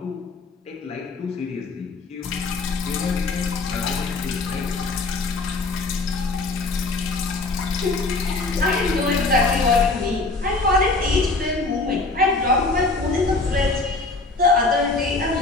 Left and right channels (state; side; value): quieter; right; 3.4 dB